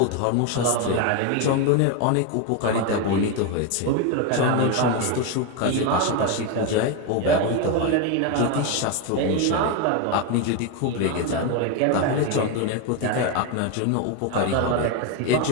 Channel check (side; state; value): both; different; correlation 0.02